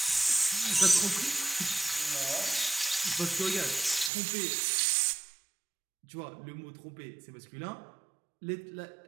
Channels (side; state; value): left; drops out; at 4.1 s